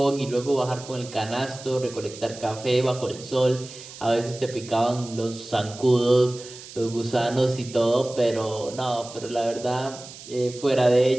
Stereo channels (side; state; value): right; noise; hiss, 15 dB below the sound